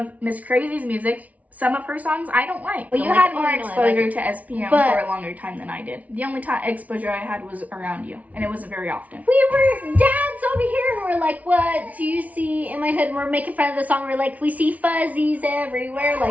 Miss Crazy's music. some of her songs I don't like. Well, you Don't had like it? more Oh, no, I exposure like to SPM But- for a longer time than I did. The only exposure I had was around you, and it wasn't very often. We were dads over here and we're like, what do you see in my hood? And we're making fun of the song. We're like, we see fuzzies everywhere,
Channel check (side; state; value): left; late; 0.070 ms